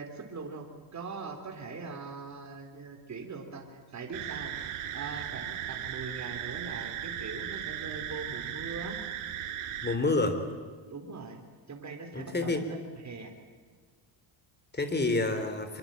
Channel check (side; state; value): both; normal; correlation 0.16